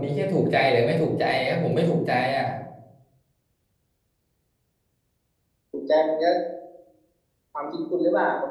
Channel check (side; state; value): both; identical; correlation 1.00